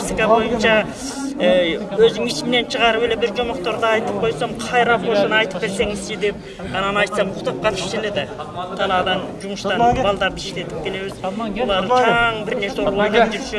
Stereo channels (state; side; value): identical; both; correlation 1.00